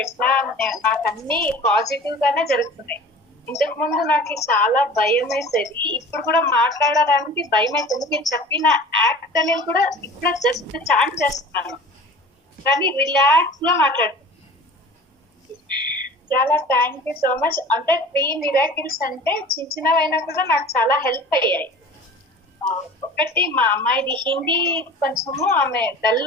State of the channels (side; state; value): both; normal; correlation 0.41